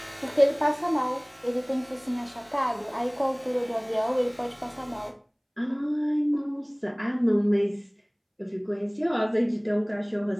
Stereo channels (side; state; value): both; identical; correlation 1.00